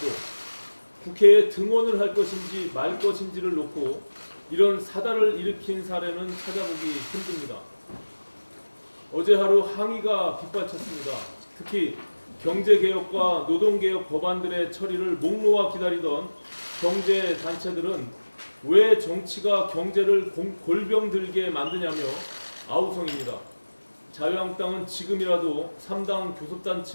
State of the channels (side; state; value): both; inverted; correlation -1.00